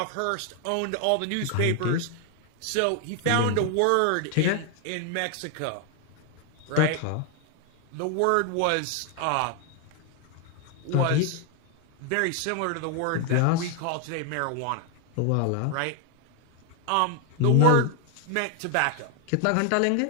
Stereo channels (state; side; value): different; both; correlation 0.01